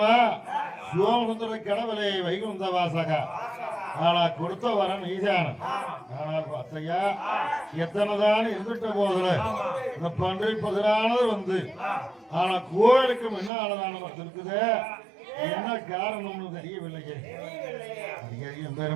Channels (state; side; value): drops out; left; at 13.5 s